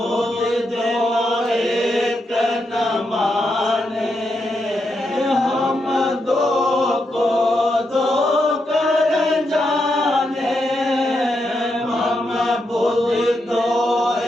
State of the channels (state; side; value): normal; both; correlation 0.83